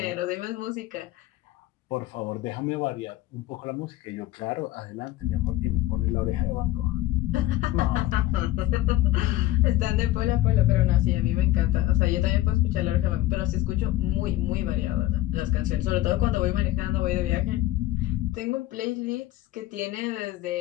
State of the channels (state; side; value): quieter; right; 15.8 dB